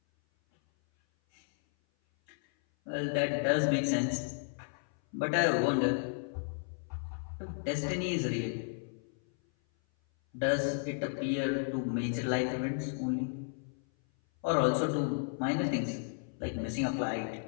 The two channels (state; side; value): silent; right; 56 dB below the other